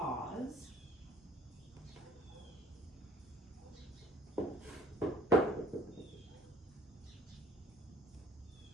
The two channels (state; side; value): normal; both; correlation 0.53